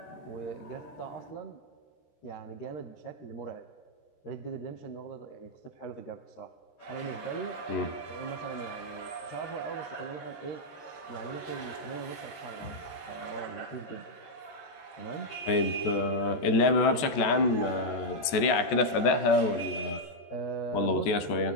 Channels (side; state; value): right; late; 14 ms